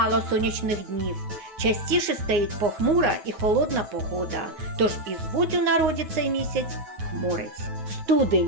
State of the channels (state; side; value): late; left; 9.7 ms